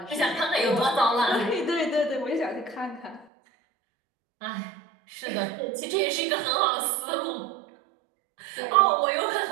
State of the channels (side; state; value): left; drops out; at 3.2 s